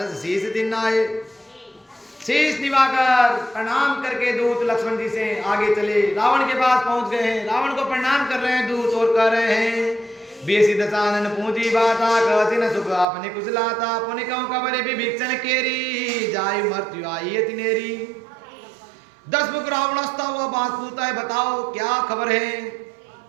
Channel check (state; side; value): drops out; left; at 13.1 s